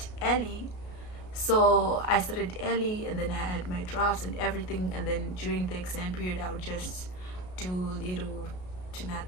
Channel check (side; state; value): right; late; 33 ms